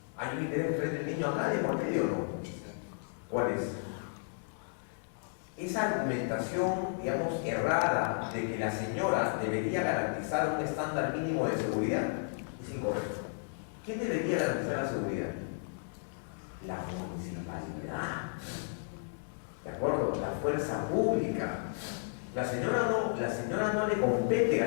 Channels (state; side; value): silent; right; digital silence